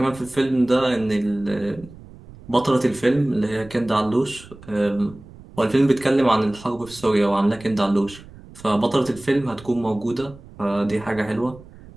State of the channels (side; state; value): right; noise; rumble, 20 dB below the sound